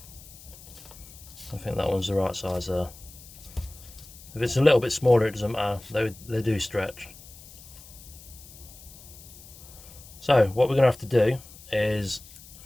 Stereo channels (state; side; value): noise; left; hiss, 19 dB below the sound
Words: I think that one's the right size there. If it's a little bit smaller, it doesn't matter, they do stretch. So what we're going to have to do is